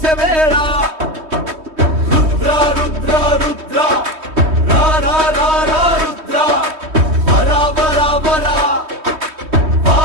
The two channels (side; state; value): left; late; 3.2 ms